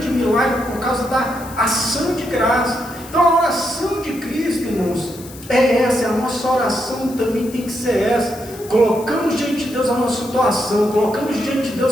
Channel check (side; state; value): left; noise; hiss, 18 dB below the sound